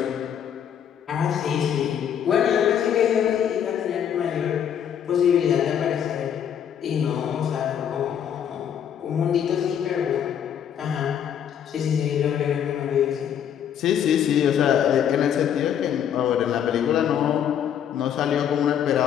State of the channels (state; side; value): quieter; right; 9.0 dB